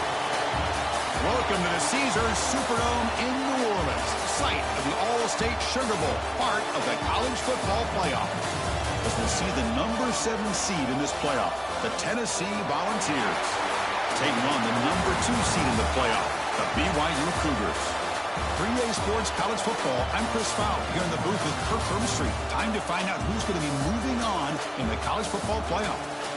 Welcome to the Caesars Superdome in New Orleans, site of the All-State Sugar Bowl, part of the college football playoff. As we see the number 7 seed in this playoff, the Tennessee Volunteers, taking on the number 2 seed in the playoff, the BYU Cougars. 3A Sports College Football, I'm Chris Fowle, here in the booth with Kirk Herbstreit. Time to find out who's going to be moving on in the college football playoff.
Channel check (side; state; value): both; identical; correlation 1.00